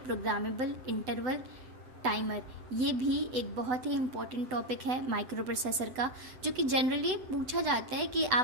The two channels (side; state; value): left; late; 7.9 ms